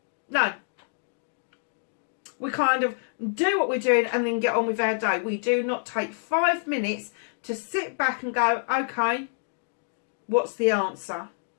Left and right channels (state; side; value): silent; right; digital silence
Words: No. We kind of do what we're doing and then get on with our day. We do not take 5 minutes to sit back and go, okay, what's the answer?